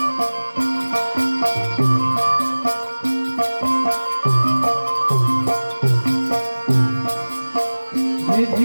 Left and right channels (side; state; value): both; inverted; correlation -1.00